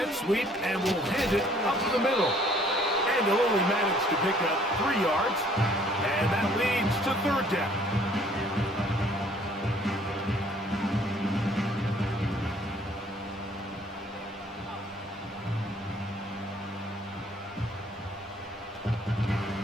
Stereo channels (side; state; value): both; normal; correlation 0.59